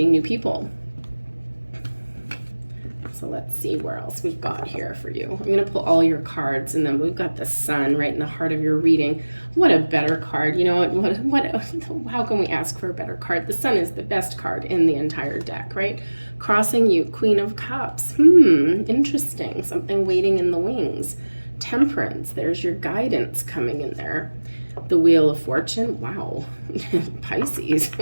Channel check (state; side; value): inverted; both; correlation -1.00